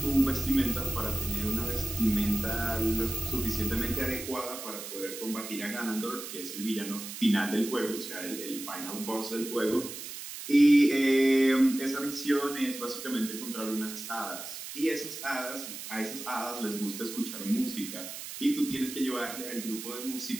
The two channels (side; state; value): right; noise; hiss, 9 dB below the sound